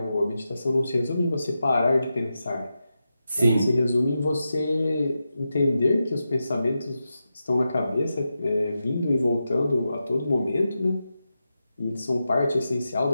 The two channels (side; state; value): both; inverted; correlation -0.90